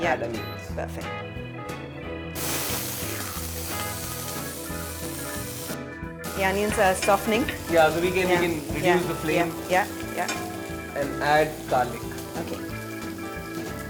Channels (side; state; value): both; identical; correlation 1.00